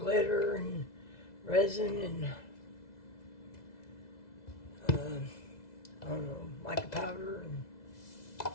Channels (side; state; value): right; late; 2.0 ms